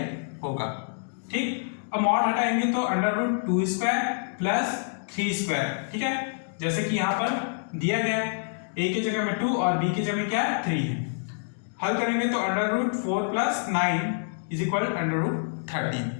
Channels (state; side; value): silent; right; digital silence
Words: होगा। ठीक, अब मॉड हटाएंगे तो under root 2 square plus 3 square. ठीक है, जैसे कि यहाँ पर दिया गया है, a की जगह में 2 और b की जगह में क्या है? 3 है। हल करेंगे तो under root 4 + 9 is equal under root 13।